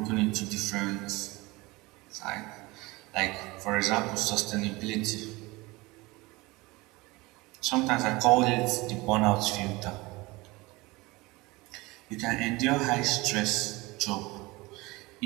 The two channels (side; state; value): left; quieter; 22.4 dB